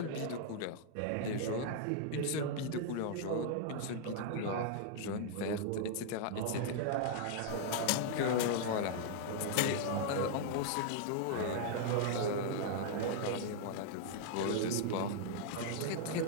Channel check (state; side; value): different; both; correlation -0.01